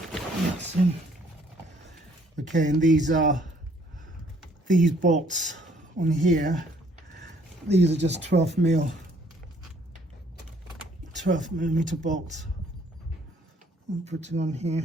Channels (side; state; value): both; normal; correlation 0.62